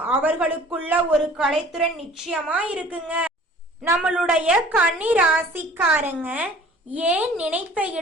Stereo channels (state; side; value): normal; both; correlation 0.49